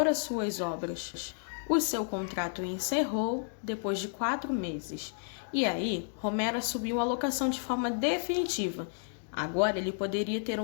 as suas obras. O seu contrato encerrou depois de 4 meses. E aí, Romero assumiu a locação de forma definitiva. Agora ele poderia ter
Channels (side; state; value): right; silent; digital silence